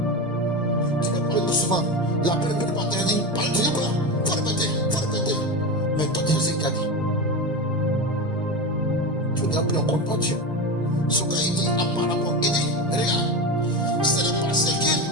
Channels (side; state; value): both; normal; correlation 0.22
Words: Tu peux parler doucement, la première de matin dit, parle de quoi? Faut répéter. Mais toi, tu sais ce qu'il a dit. Tu n'as plus en compte pas Dieu. Ce qu'il dit apparemment, il dit, regarde, ce n'est pas